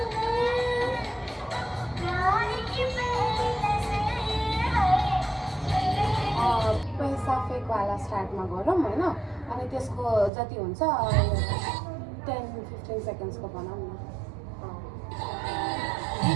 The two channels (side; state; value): left; drops out; at 10.3 s